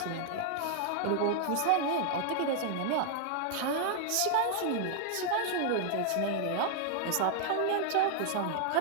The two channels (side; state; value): both; different; correlation 0.00